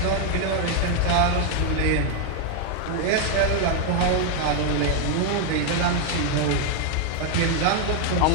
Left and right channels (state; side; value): different; both; correlation 0.00